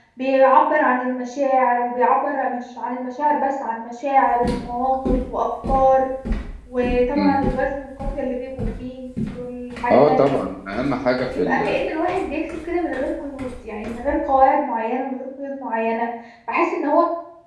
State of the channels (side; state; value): both; identical; correlation 1.00